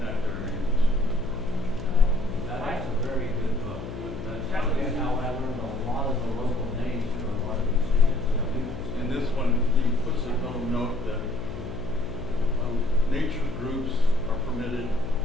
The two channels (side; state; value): left; noise; hum, 9 dB below the sound